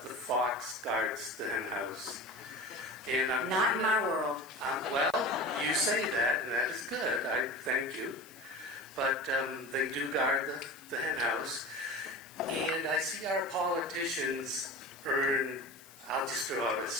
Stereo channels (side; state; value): left; noise; hiss, 21 dB below the sound